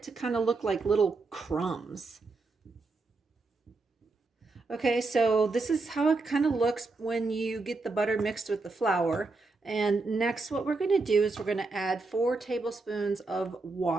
to kind of look like little crumbs. Okay, so this is how it kind of looks when you get the butter mixed with the flour. And next what we're going to do is we're going to add 4 tablespoons of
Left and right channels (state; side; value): quieter; left; 3.6 dB